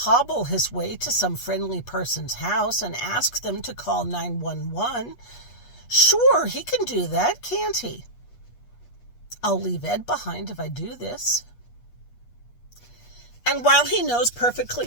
his way to some friendly person's house and ask them to call 911. Sure, he can do that, can't he? I'll leave Ed behind if I do this. And while he knows perfectly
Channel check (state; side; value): late; right; 8.3 ms